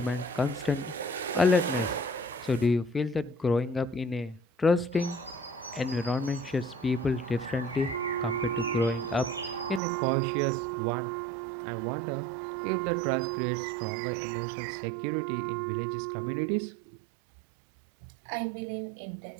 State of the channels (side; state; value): left; drops out; at 9.8 s